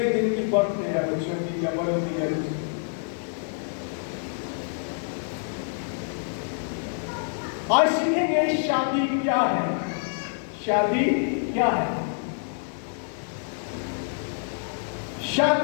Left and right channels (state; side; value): silent; right; digital silence